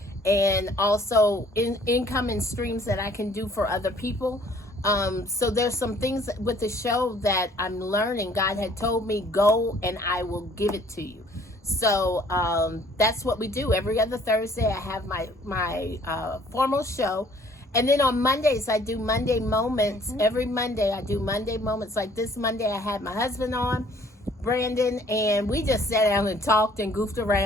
And also income and streams that I can do for other people. So there's some things with the show that I'm learning. God had told me, go and I will give it to you. So that's what we do. Every other Thursday, I have my formal show. And then on Mondays, I do Monday Moments. Every Monday, I do Monday Moments. Like this Monday, I had my husband on. Brandon, and we just sat down and talked and goofed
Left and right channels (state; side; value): normal; both; correlation 0.58